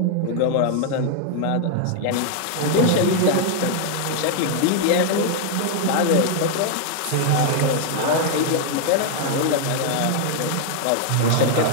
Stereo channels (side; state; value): both; different; correlation 0.00